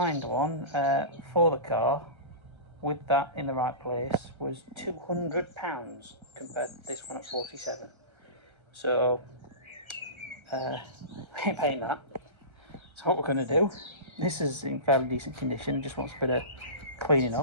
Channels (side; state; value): left; late; 1.3 ms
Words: one for the car with that in the right place was £200 compared to this one at 47. So I ain't paying that. So what we're going to do, this is in fairly decent condition, just wants a bit of cleaning